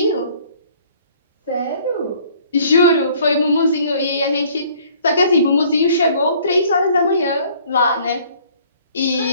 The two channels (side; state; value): both; inverted; correlation -0.56